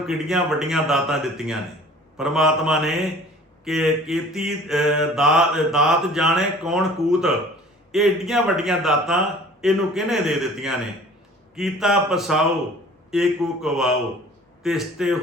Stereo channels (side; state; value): both; normal; correlation 0.48